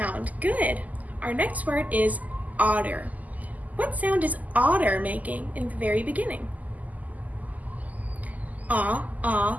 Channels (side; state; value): left; late; 0.079 ms